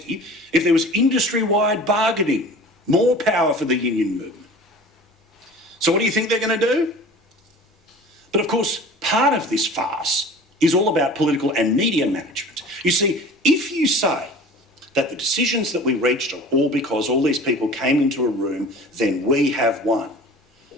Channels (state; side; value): normal; both; correlation 0.42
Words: if there was industry-wide bargaining, more power for the union movement. So what do you think they're going to do? But of course, part of this farce is all about political and media management. You see, if you say that the decisions that we reached are all because all these people came into a room, then we have won.